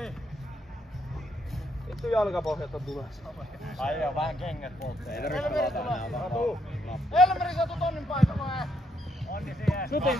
Vittu jalkapohjalta tulee. Ai joo, vähän kengät polttaa. Ei tarvitse pelata enää. Elmeri, sä tuut Onnin paikalle. Onni siihen. Suti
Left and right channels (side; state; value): both; normal; correlation 0.75